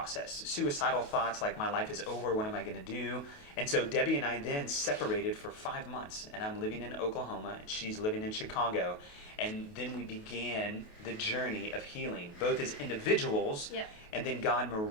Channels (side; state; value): right; late; 28 ms